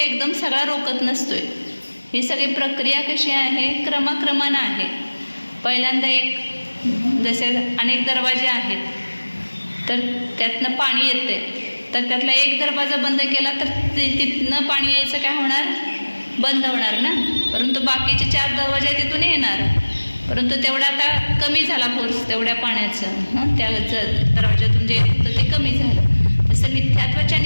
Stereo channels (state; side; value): inverted; both; correlation -1.00